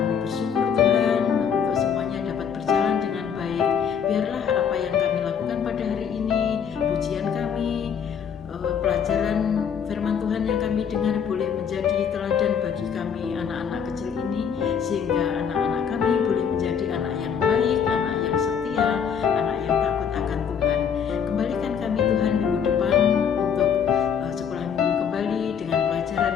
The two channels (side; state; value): right; quieter; 7.4 dB